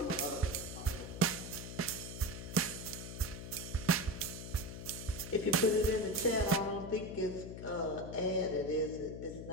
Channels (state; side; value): noise; left; hum, 9 dB below the sound